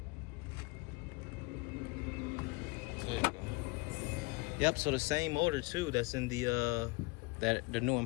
There you go. Yep, so the same motor too that's in the new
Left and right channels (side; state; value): right; quieter; 25.3 dB